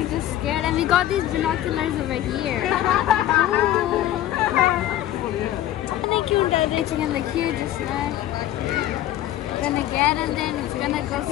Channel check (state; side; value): quieter; right; 13.2 dB